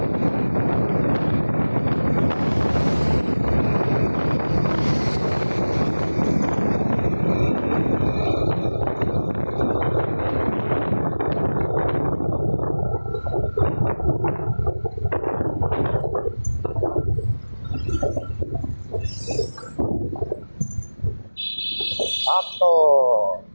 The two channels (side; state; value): both; inverted; correlation -1.00